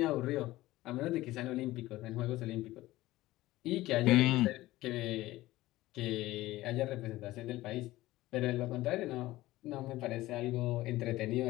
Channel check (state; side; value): quieter; right; 17.2 dB